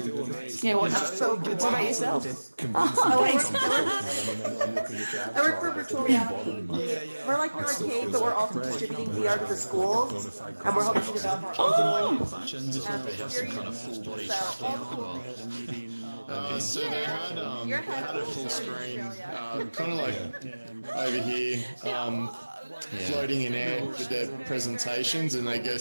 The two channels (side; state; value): both; inverted; correlation -1.00